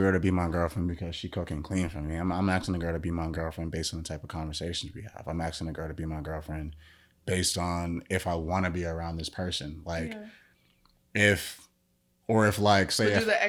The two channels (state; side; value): identical; both; correlation 1.00